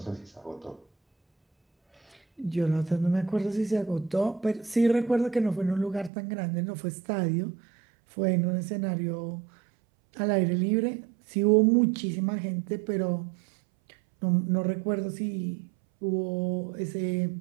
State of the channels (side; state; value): left; drops out; at 6.1 s